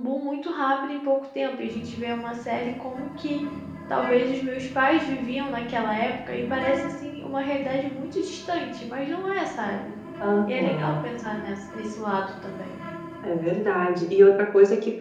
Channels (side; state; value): both; identical; correlation 1.00